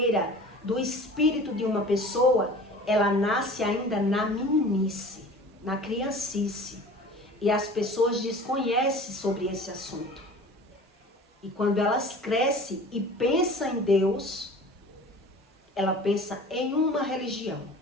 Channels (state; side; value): normal; both; correlation 0.42